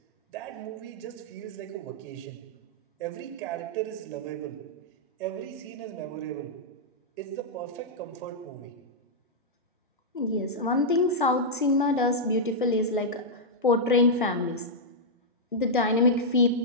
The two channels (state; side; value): normal; both; correlation -0.08